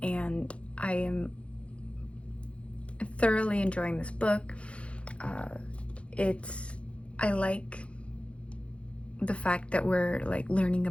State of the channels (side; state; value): right; late; 0.061 ms